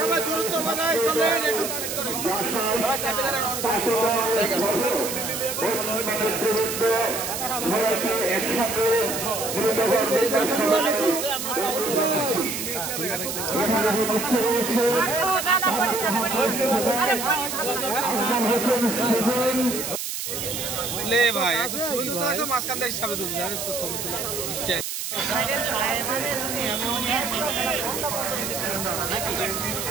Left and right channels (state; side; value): noise; right; hiss, 4 dB below the sound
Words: দূরত্ব বানাই চলেন একটু ভাই মাঝখান থেকে হিসাবে তো ছবি তোলা নিশ্চয়।